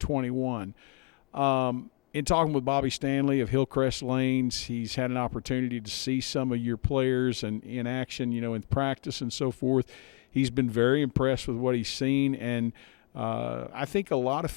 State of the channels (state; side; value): quieter; right; 36.5 dB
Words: In talking with Bobby Stanley of Hillcrest Lanes, he's had an opportunity to see some of your players and in action, in practice and so forth. He's been very impressed with what he's seen, and I think a lot of